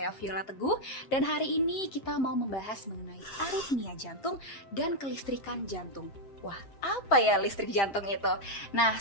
Viola Teguh. Dan hari ini kita mau membahas mengenai aritmia jantung dan kelistrikan jantung. Wah, apa ya listrik jantung itu? Nah,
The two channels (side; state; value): right; late; 7.6 ms